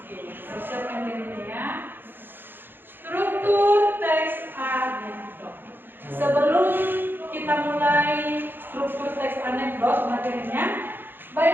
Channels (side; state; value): left; late; 0.098 ms